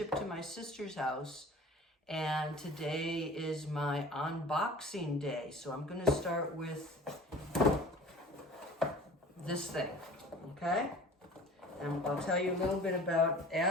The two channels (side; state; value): both; normal; correlation 0.43